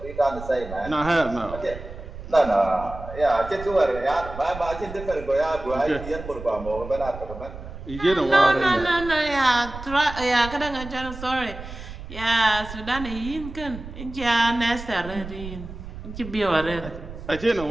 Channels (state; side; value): noise; right; rumble, 12 dB below the sound